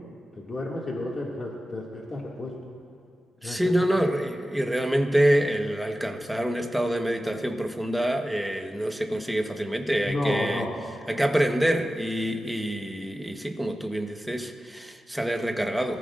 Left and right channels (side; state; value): both; normal; correlation 0.94